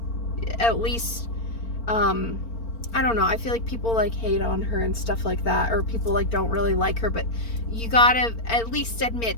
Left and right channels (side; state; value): right; late; 4.4 ms